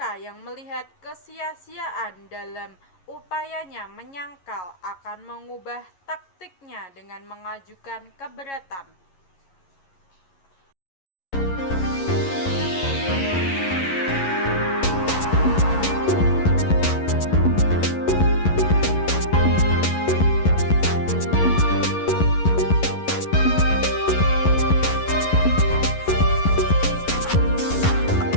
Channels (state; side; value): late; right; 11 ms